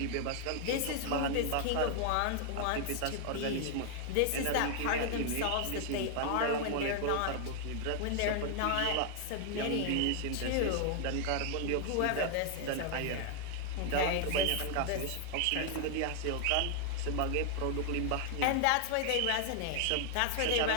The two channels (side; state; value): both; different; correlation 0.00